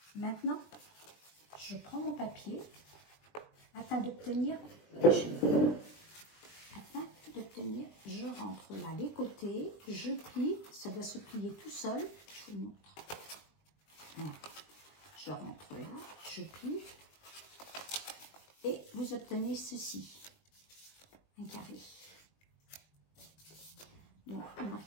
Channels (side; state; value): right; late; 20 ms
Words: Maintenant, je prends mon papier afin d'obtenir, je rentre là les côtés, je plie, ça doit se plier tout seul, je vous montre. Voilà. Je rentre là, je plie. Et vous obtenez ceci, un carré. Donc, vous